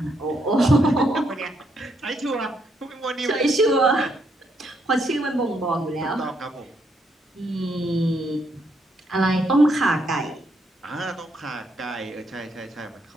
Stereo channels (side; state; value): both; normal; correlation 0.75